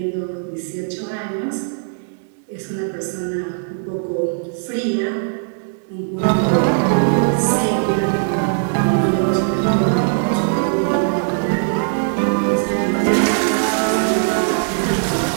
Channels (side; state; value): left; silent; digital silence